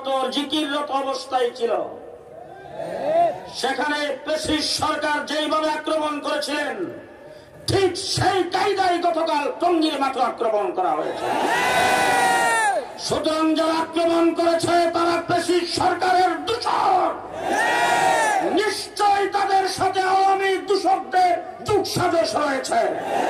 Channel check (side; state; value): both; identical; correlation 1.00